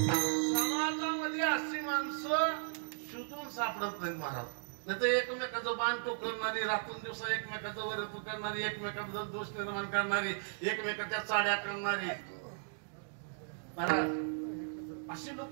समाजामध्ये अशी माणसं शोधून सापडत नाहीत महाराज. नाही तर एकमेकाचं बाण टोकरणारी, रातून दिवसा एकमेकाचं वर करणारी, एकमेकाबद्दल दोष निर्माण करणारी, एकमेकाच्या चाड्या करणारी महाराज, अशी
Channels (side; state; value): left; silent; digital silence